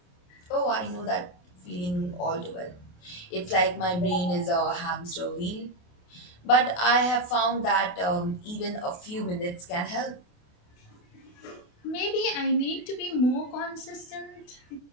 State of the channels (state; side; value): late; right; 28 ms